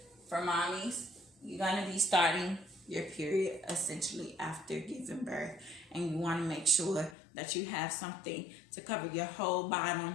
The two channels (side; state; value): right; drops out; at 7.2 s